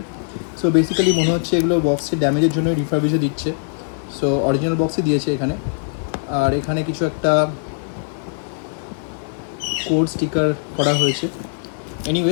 সো বেসিক্যালি মনে হচ্ছে এগুলো বক্সের ড্যামেজের জন্যই রিফারবিশে দিচ্ছে। সো অরিজিনাল বক্সে দিয়েছে এখানে, আর এখানে কিছু একটা কোড স্টিকার করা হয়েছে।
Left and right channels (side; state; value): right; silent; 58 dB below the other